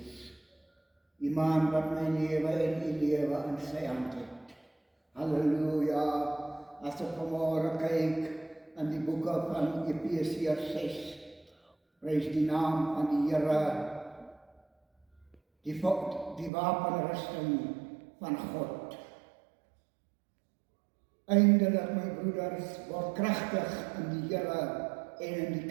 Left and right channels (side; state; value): left; drops out; at 16.5 s